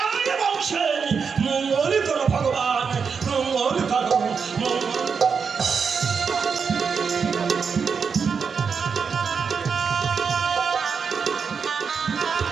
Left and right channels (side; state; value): left; quieter; 5.9 dB